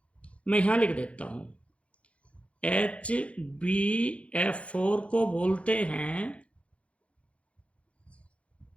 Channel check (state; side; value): late; right; 0.062 ms